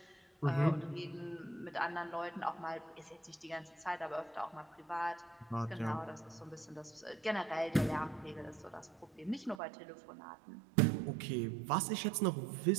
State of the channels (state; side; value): drops out; left; at 9.6 s